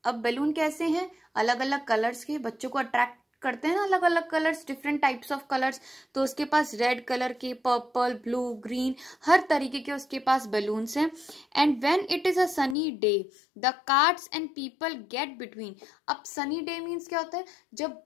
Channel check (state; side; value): drops out; right; at 12.8 s